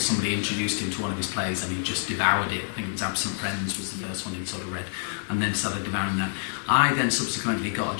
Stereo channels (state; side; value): silent; right; 60 dB below the other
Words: introduced him to one of his plays and he just devoured it. I think it was Absent Friends was the first one he'd sort of read, and then started devouring that. I then subsequently got a